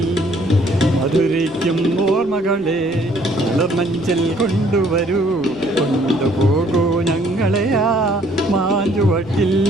മധുരിക്കും ഓർമ്മകളെ മലർമഞ്ചൽ കൊണ്ടുവരൂ, കൊണ്ടുപോകൂ ഞങ്ങളെ ആ മാഞ്ചുവട്ടിൽ,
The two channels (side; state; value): right; noise; rumble, 23 dB below the sound